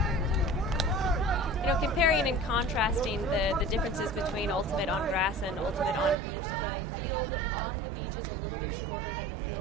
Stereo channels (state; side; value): drops out; left; at 6.2 s